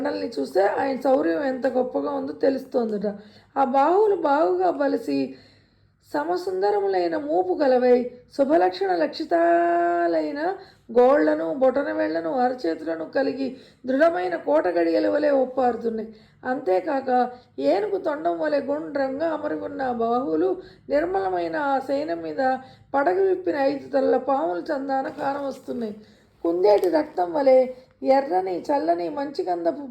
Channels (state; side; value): identical; both; correlation 1.00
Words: చూస్తే ఆయన శౌర్యం ఎంత గొప్పగా ఉందో తెలుస్తోందట. ఆ బాహువులు బాగుగా బలిసి సమసుందరములైన మూపు గలవై శుభలక్షణ లక్షితాలైన గోళ్లను, బొటన వేళ్లను, అరచేతులను కలిగి దృఢమైన కోట గడియల వలె ఒప్పారుతున్నాయి. అంతేకాక ఏనుగు తొండం వలె గుండ్రంగా అమరి ఉన్న బాహువులు నిర్మలమైన ఆ శయనం మీద పడగ విప్పిన 5 తలల పాముల చందాన కానవస్తున్నాయి. కుందేటి రక్తం వలె ఎర్రని చల్లని మంచిగంధపు